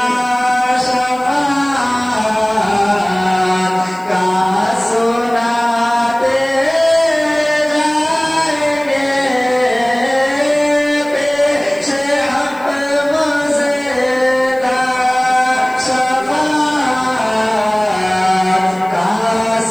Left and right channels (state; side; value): noise; left; hiss, 28 dB below the sound